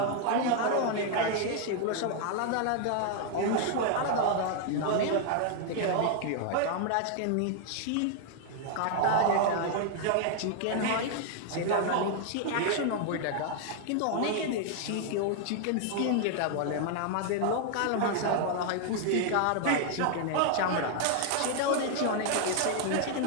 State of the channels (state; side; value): different; both; correlation 0.00